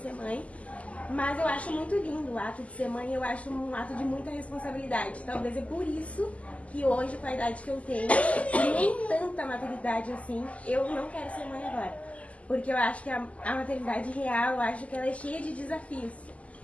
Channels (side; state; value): right; late; 0.067 ms